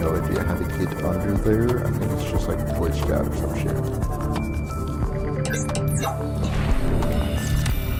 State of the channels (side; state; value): both; identical; correlation 1.00